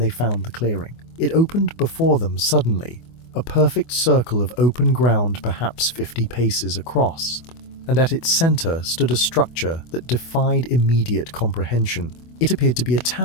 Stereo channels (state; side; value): late; right; 24 ms